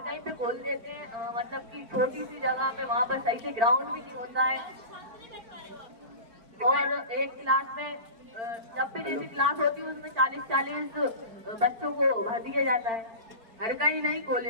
कहीं पे खोल देते हैं, मतलब कि छोटी सी जगह पे वहाँ पर सही से ग्राउंड भी नहीं होता है। और एक क्लास में जब भी जैसी क्लास होती है उसमें 40-40 बच्चों को भर दिया जाता है। हर कहीं नहीं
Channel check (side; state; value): left; late; 4.4 ms